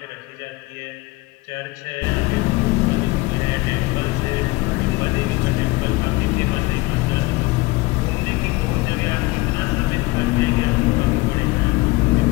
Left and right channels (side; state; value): right; quieter; 21.6 dB